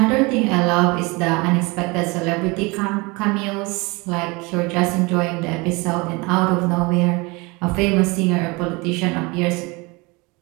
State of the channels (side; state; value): left; quieter; 26.1 dB